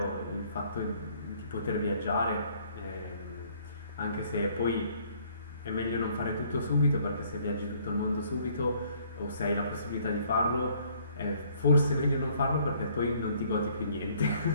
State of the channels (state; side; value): inverted; both; correlation -0.62